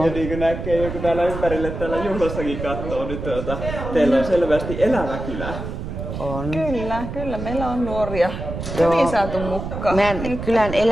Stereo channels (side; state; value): right; noise; rumble, 7 dB below the sound